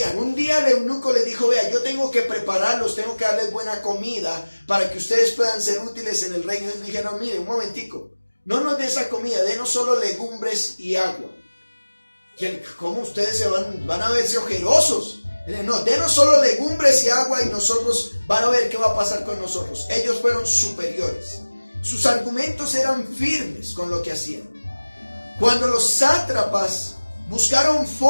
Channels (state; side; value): inverted; both; correlation -1.00